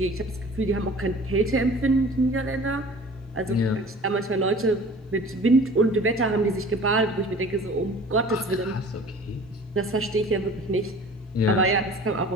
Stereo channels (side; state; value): both; normal; correlation 0.45